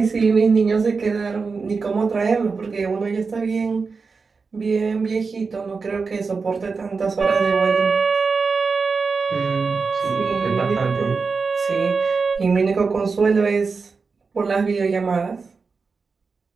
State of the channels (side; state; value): left; quieter; 4.7 dB